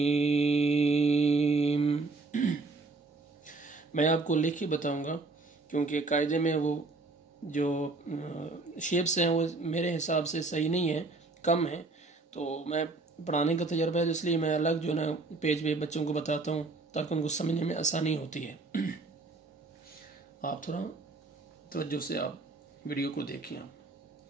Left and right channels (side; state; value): left; quieter; 3.5 dB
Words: मैं आपको लिख के बताऊंगा, क्योंकि कायदे में वो जो शेप्स हैं वो मेरे हिसाब से सही नहीं है, कम है। तो मैं पढ़ाने का तजर्बा है, तो इसलिए मैं अलग जो ना पेज पे बच्चों को बताता हूँ, ताकि उनको समझने में आसानी होती है। आप थोड़ा तवज्जो से आप वीडियो को देखिए। आप